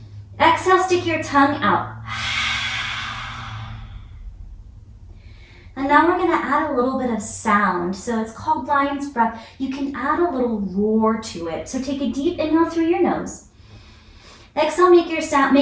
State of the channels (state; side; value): identical; both; correlation 1.00